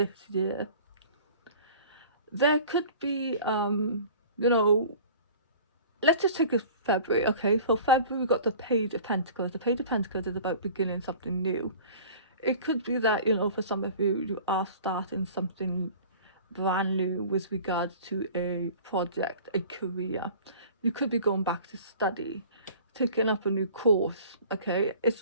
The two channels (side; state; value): both; inverted; correlation -0.44